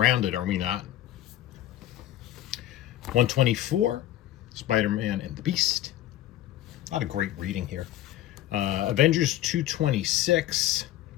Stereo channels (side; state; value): right; quieter; 13.6 dB